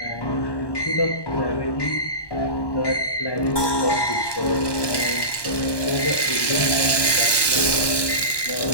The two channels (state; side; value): late; right; 1.1 ms